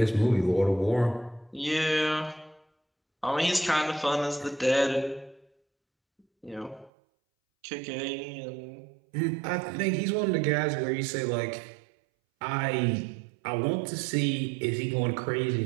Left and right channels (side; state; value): left; drops out; at 6.9 s